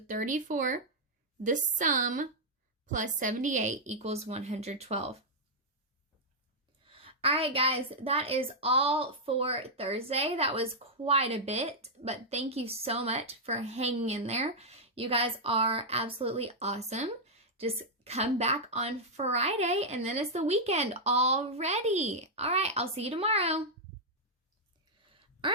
the sum plus 78 equals 112. All right, guys, that is all for Thursday. That was quite a bit, but thank you so much for hanging in there. You guys are absolutely awesome. Just come back on Friday, and then it's the weekend already. All right, I'll see you tomorrow. All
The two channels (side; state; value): both; normal; correlation -0.05